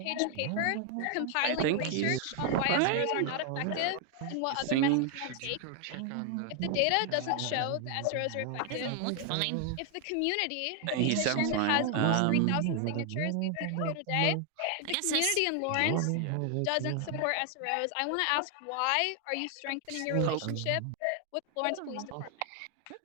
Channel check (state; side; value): different; both; correlation 0.00